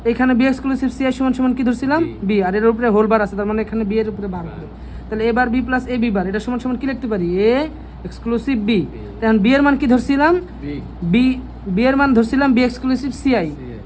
এখানে বি এক্সক্লুসিভ সি আই সমান সমান কি ধরছিলাম? বি, আর এর উপরে হোল বার আছে, তার মানে এখানে বি এর উপরে বার হবে। তাহলে এবার B plus A B bar, এটা সমান সমান কি লিখতে পারি? A exclusive B. এখন বি এর মান কি ধরছিলাম? বি এর মান ধরছিলাম বি এক্সক্লুসিভ সি আই।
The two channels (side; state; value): both; identical; correlation 1.00